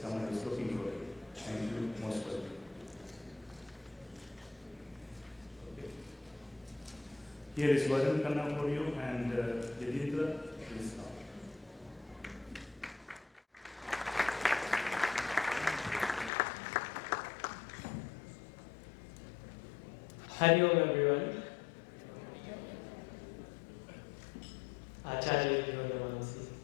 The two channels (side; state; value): right; drops out; at 16.3 s